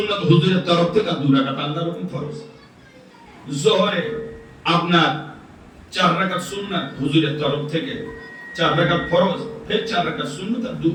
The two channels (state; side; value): identical; both; correlation 1.00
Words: হুজুরের তরফ থেকে, 2 রাকাত আল্লাহর হুকুম ফরজ। যোহরে আপনার 4 রাকাত সুন্নাত হুজুরের তরফ থেকে, 4 রাকাত ফরজ, ফের 4 রাকাত সুন্নাত আর